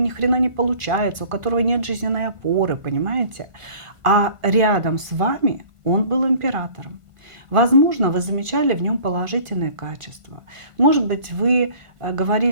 хрена не получается, у которого нет жизненной опоры, понимаете? А рядом с вами он был императором. Возможно, вы замечали в нем положительные качества. Может быть, вы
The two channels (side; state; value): left; late; 1.5 ms